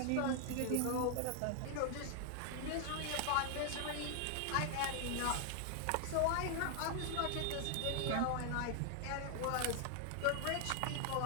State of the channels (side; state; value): both; different; correlation 0.00